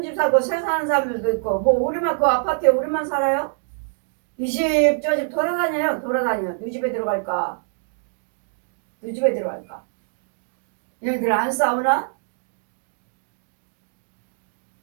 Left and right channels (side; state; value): left; silent; digital silence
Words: 집 살고 새 사는 사람들도 있고 뭐 우리만 그 아파트에 우리만 살아요? 이 집 저 집 돌아다녀요. 네 집에 들어갈까? 얘네들 안 싸우나?